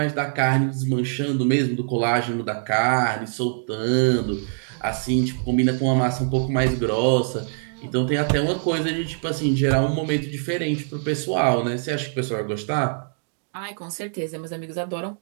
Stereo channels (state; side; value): silent; left; digital silence